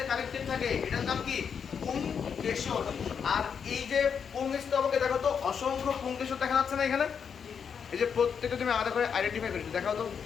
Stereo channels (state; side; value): quieter; right; 6.9 dB